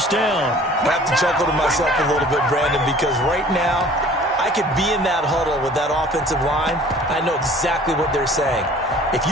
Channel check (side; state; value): both; normal; correlation 0.49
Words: down. I have to chuckle to myself a little bit, Brandon, because right now I could be in that huddle with that offensive line. I know exactly what they're saying. If